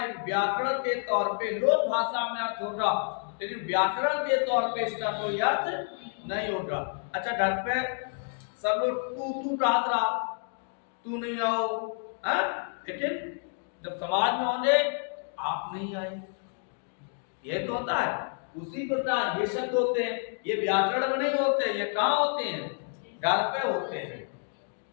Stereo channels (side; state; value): right; silent; 58 dB below the other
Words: लेकिन व्याकरण के तौर पे लोक भाषा में अर्थ होगा, लेकिन व्याकरण के तौर पे इसका कोई अर्थ नहीं होगा। अच्छा, घर पे सब लोग तू रहा, तू नहीं आओ, लेकिन जब समाज में होंगे आप नहीं आए, ये तो होता है। उसी प्रकार ये शब्द होते हैं, ये व्याकरण में नहीं होते, ये कहाँ होते हैं? घर पे होते हैं।